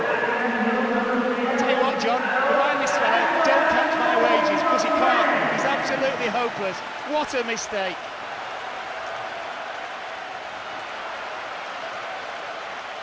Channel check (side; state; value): both; identical; correlation 1.00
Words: Tell you what, John, remind this fella, don't count my wages, because he can't. He's absolutely hopeless. What a mistake.